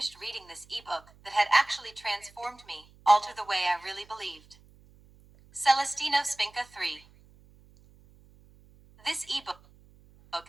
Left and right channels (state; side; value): noise; right; hum, 27 dB below the sound